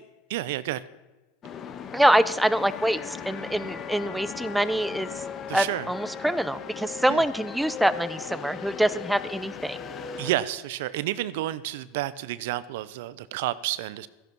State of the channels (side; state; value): both; normal; correlation 0.77